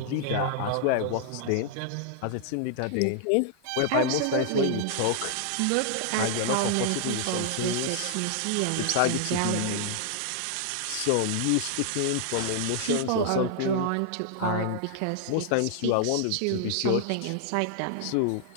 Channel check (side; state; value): both; different; correlation -0.01